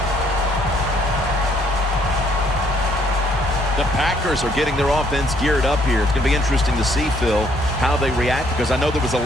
The Packers are getting their offense geared up here. It's going to be interesting to see, Phil, how they react, because I know there was a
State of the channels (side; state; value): both; normal; correlation 0.66